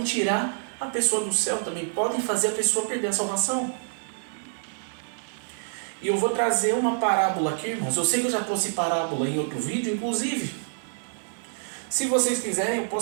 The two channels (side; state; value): left; silent; 60 dB below the other